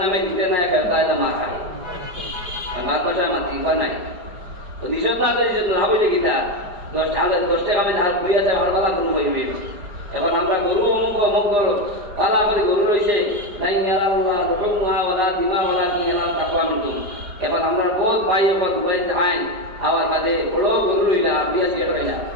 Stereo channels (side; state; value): left; late; 4.9 ms